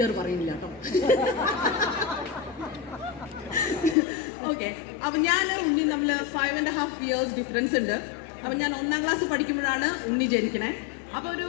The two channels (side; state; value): right; drops out; at 4.0 s